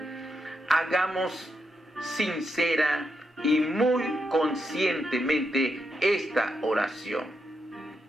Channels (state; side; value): normal; both; correlation 0.83